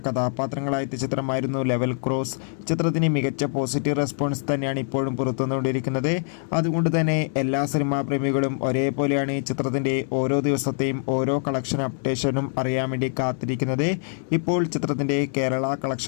കഥാപാത്രങ്ങളായ ചിത്രമായിരുന്നു ലെവൽ ക്രോസ്. ചിത്രത്തിന് മികച്ച പോസിറ്റീവ് റെസ്പോൺസ് തന്നെയാണ് ഇപ്പോഴും പുറത്തുവന്നുകൊണ്ടിരിക്കുന്നത്. അതുകൊണ്ട് തന്നെ എല്ലാ സിനിമാ പ്രേമികളും ഒരേപോലെയാണ് ചിത്രത്തിൻ്റെ ഓരോ ദിവസത്തെയും ഓരോ കളക്ഷൻ അപ്ഡേഷനും അറിയാൻ വേണ്ടി കാത്തിരിക്കുന്നത്. ഇപ്പോൾ ചിത്രത്തിൻ്റെ കേരള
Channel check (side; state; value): right; silent; 62 dB below the other